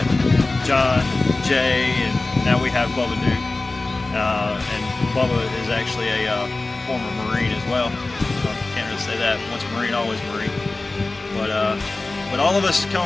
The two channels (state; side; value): quieter; right; 3.2 dB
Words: John, Jay, and now we have Bubba Duke. And Bubba is actually a former Marine as well. Can't really say that. Once a Marine, always a Marine. But all of us